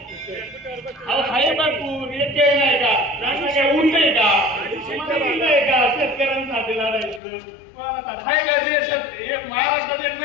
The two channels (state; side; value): drops out; right; at 7.2 s